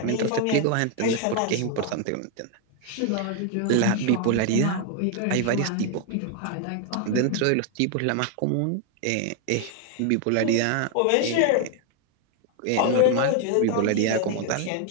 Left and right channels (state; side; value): different; both; correlation 0.00